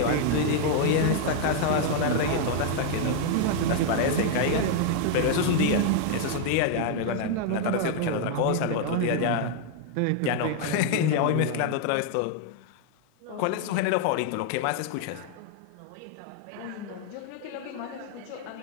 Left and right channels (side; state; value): both; different; correlation 0.00